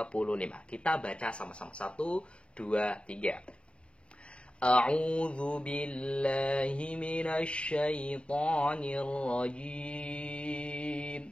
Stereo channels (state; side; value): late; right; 0.057 ms